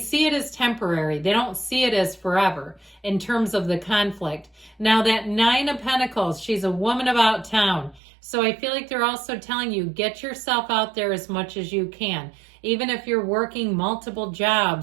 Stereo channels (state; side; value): drops out; left; at 8.0 s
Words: it as temporary. They don't see it as forever in terms of the conflict. Now that 9 of Pentacles, she's a woman about town. So I feel like they're also telling you, get yourself out there as much as you can. even if you're working multiple